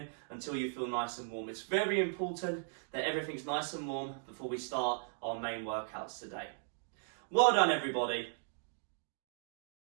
until you feel nice and warm. It's very important that everything's nice and warm before we start our main workouts today. Well done, everybody.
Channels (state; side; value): silent; left; digital silence